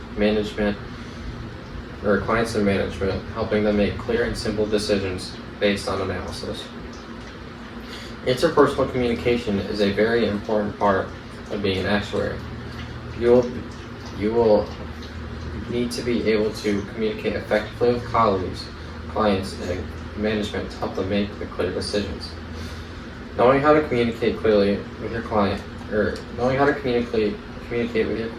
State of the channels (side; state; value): both; identical; correlation 1.00